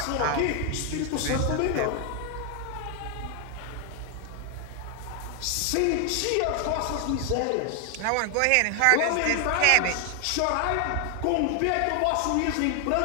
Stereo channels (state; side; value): different; both; correlation 0.00